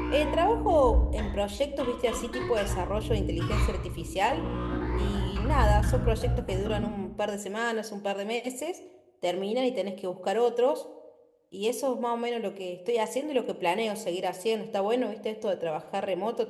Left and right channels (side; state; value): both; identical; correlation 1.00